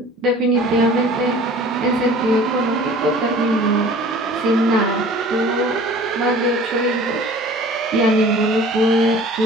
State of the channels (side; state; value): both; normal; correlation 0.46